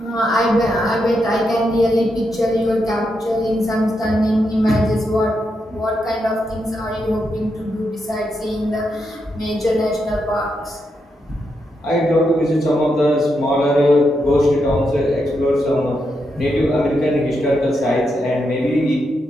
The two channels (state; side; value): normal; both; correlation 0.83